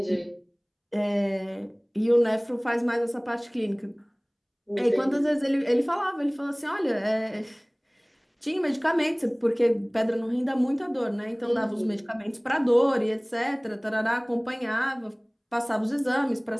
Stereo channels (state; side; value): identical; both; correlation 1.00